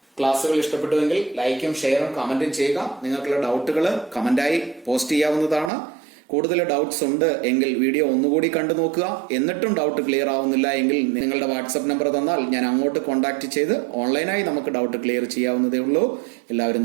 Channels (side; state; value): left; drops out; at 5.7 s